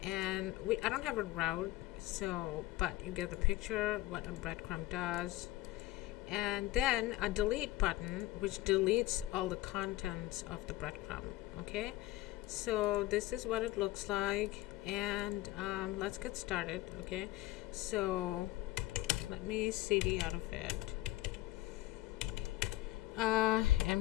and I don't have a route, but you get the picture what a BreadCrumb does. And then a delete button which deletes all the contents of the breadcrumb. Okay, so this is what it looks like, and let's get started. Okay, so let me cd out of it,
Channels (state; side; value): quieter; right; 17.3 dB